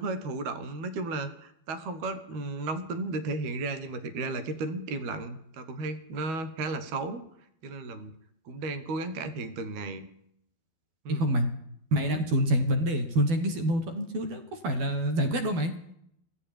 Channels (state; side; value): late; left; 12 ms